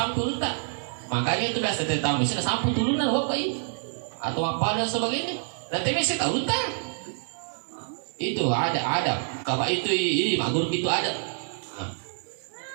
tak Makanya itu biasa tamu sih sampu turunan bapak ini atau apa dan sebagainya. Nanti mesti tahu tak? Itu ada. Kalau itu ini mak guru itu ada.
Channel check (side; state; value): left; silent; 58 dB below the other